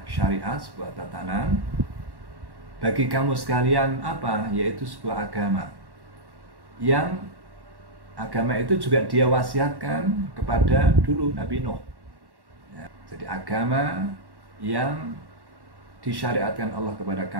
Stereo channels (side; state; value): left; late; 1.1 ms